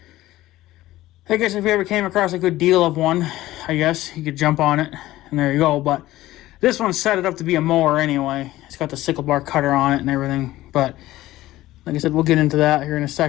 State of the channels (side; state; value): right; quieter; 16.1 dB